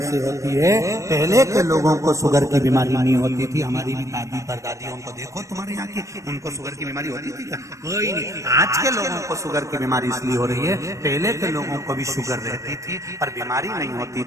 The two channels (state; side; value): late; left; 0.15 ms